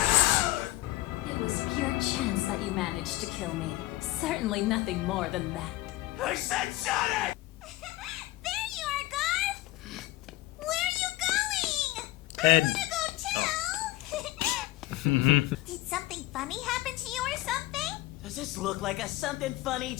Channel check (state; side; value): quieter; right; 17.7 dB